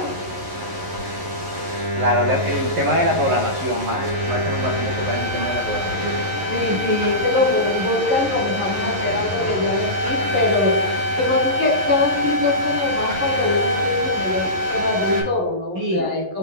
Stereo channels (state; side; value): late; left; 11 ms